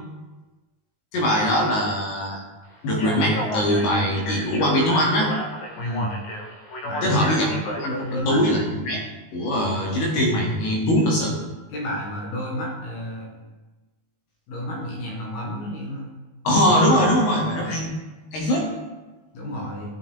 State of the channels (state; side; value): late; right; 19 ms